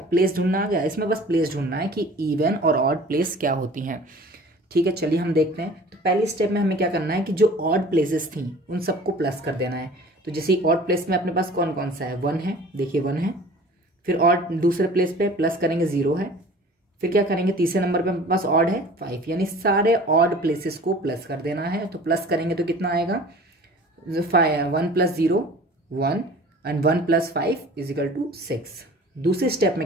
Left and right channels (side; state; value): both; normal; correlation 0.45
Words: प्लेस ढूंढना आ गया। इसमें बस प्लेस ढूंढना है कि इवन और ऑड प्लेस क्या होती हैं। ठीक है, चलिए हम देखते हैं। तो पहली स्टेप में हमें क्या करना है कि जो ऑड प्लेसेस थी उन सबको प्लस कर देना है। तो जैसे ऑड प्लेस में अपने पास कौन कौन सा है? 1 है, देखिए 1 है। फिर ऑड दूसरे प्लेस पे प्लस करेंगे 0 है। फिर क्या करेंगे? तीसरे नंबर पे अपने पास ऑड है 5, यानी सारे ऑड प्लेसेस को प्लस कर देना है। तो प्लस करेंगे तो कितना आएगा? 1 + 0 1 एंड 1 + 5 = 6। दूसरी स्टेप में